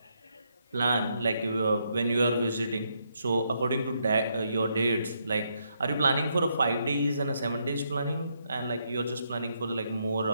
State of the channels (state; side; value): inverted; both; correlation -0.77